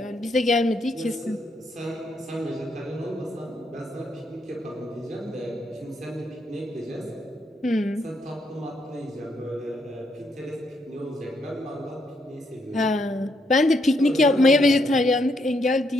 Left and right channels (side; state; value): both; normal; correlation 0.76